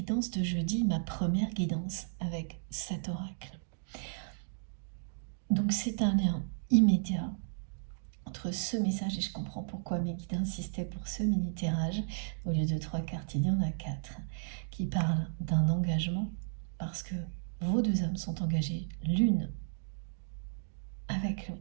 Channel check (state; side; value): silent; left; digital silence